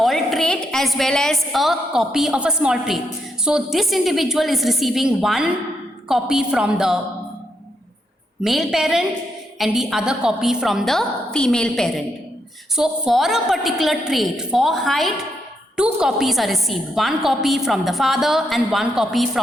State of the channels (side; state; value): both; normal; correlation 0.79